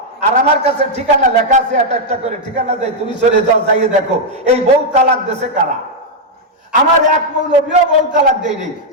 আর আমার কাছে ঠিকানা লেখা আছে, একটা করে ঠিকানা দেয়, তুমি চলে যাও, যাইয়ে দেখো এই বউ তালাক দেশে কারা। আমার এক মৌলবীও বউ তালাক দেয়নি।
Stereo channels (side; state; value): both; normal; correlation -0.02